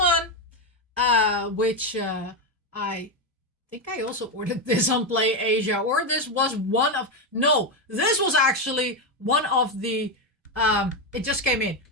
which I think I also ordered this on Play Asia, or this was this was actually one of the, it just came in,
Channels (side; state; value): both; normal; correlation 0.08